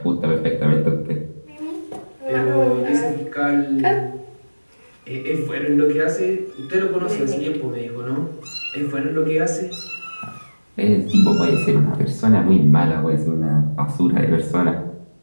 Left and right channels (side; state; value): both; inverted; correlation -1.00